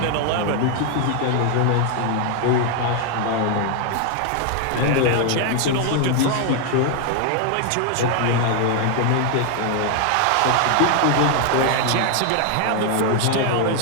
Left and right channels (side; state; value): both; different; correlation 0.00